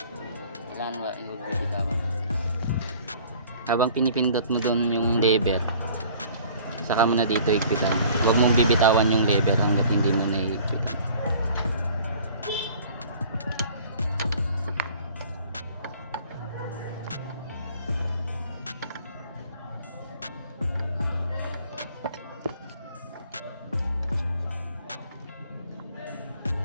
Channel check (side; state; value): both; inverted; correlation -0.51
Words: Kailangan huwag mo bitawan. Habang pinipindot mo doon yung lever, saka mo na dito higpitan. Huwag mong bibitawan yung lever hanggat hindi mo na higpitan.